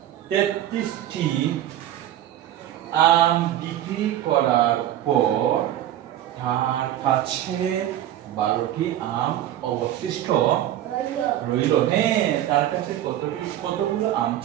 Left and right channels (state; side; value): quieter; left; 12.3 dB